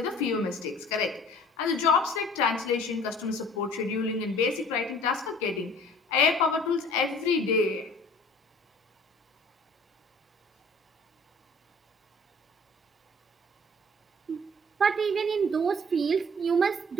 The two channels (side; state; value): both; normal; correlation 0.50